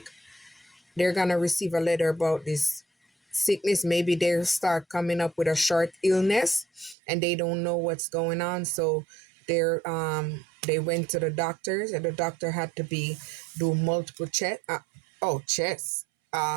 They're going to receive a letter about this sickness. Maybe they start coming up with a short illness and they don't know what's going on, so they went to the doctors, and the doctor had to do multiple checks.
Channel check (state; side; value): drops out; left; at 7.0 s